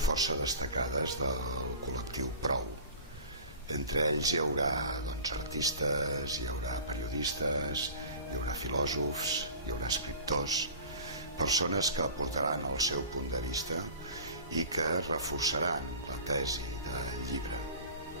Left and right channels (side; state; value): both; inverted; correlation -0.39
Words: força destacades del col·lectiu Prou. Entre ells hi haurà artistes, hi haurà periodistes, hi haurà filòsofs, hi haurà escriptors, persones que aportaran el seu punt de vista i que reforçaran la tesi del llibre.